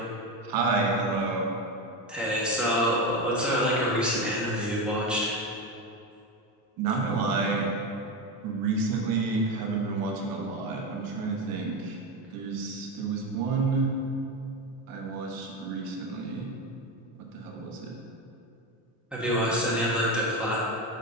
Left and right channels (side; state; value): both; normal; correlation 0.17